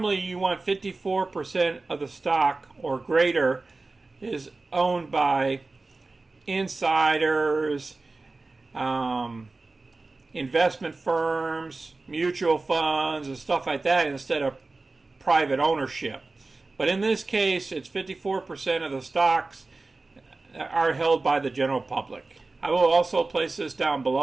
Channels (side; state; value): left; quieter; 3.5 dB